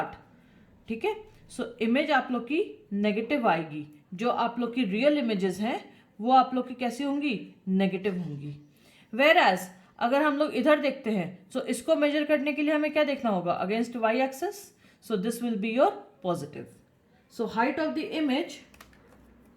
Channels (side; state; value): both; identical; correlation 1.00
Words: ठीक है। सो इमेज आप लोग की नेगेटिव आएगी, जो आप लोग की रियल इमेजेस हैं वो आप लोग की कैसी होंगी, नेगेटिव होंगी। वेयर एज अगर हम लोग इधर देखते हैं, सो इसको मेजर करने के लिए हमें क्या देखना होगा, against Y axis, so this will be your positive. So height of the image